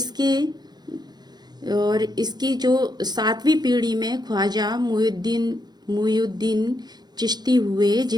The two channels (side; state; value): left; late; 0.20 ms